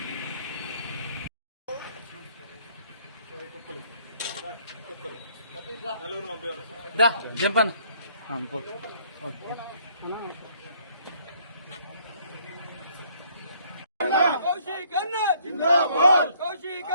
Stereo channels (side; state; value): both; inverted; correlation -0.64